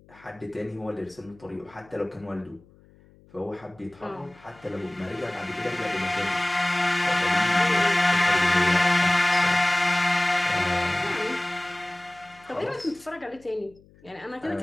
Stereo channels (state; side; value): noise; left; hum, 27 dB below the sound